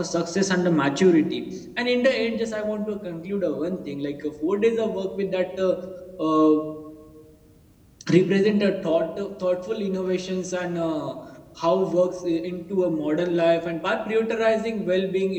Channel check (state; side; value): identical; both; correlation 1.00